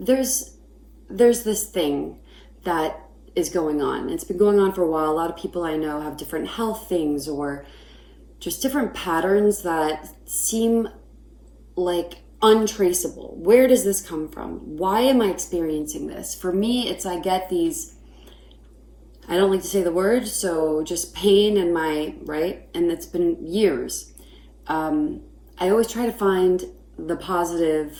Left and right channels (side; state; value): both; identical; correlation 1.00